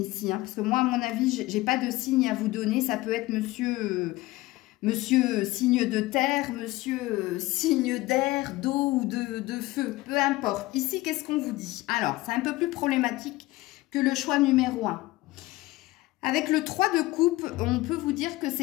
ici, hein, parce que moi à mon avis j'ai pas de signe à vous donner. Ça peut être monsieur signe de terre, monsieur signe d'air, d'eau ou de feu, peu importe. Ici qu'est-ce qu'on vous dit? Alors c'est un peu plus problématique que le choix numéro 1. Avec le 3 de coupe, on peut vous dire que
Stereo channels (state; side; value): quieter; right; 18.9 dB